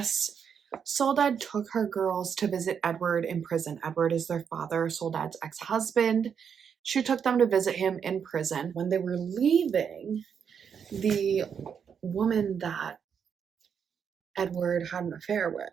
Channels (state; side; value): quieter; left; 7.3 dB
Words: Soledad took her girls to visit Edward in prison. Edward is their father, Soledad's ex-husband. She took them to visit him in prison. When they were leaving, the woman that Edward had an affair